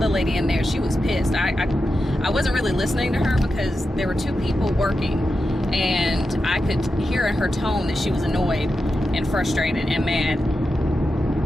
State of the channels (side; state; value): both; normal; correlation 0.89